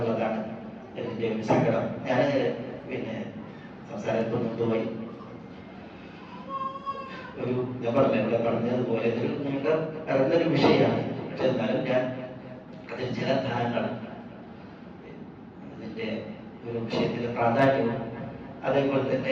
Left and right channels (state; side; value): identical; both; correlation 1.00